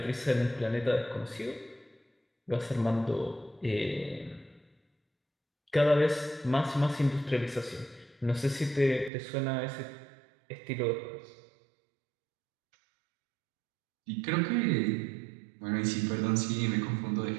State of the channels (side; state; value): left; drops out; at 9.1 s